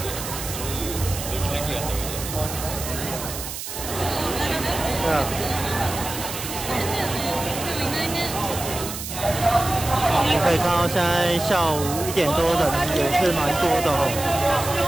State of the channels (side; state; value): right; noise; hiss, 8 dB below the sound